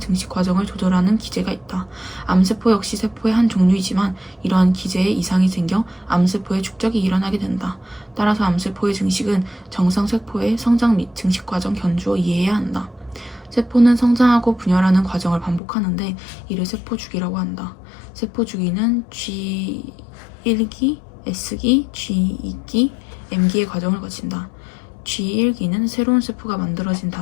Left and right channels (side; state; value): right; drops out; at 15.6 s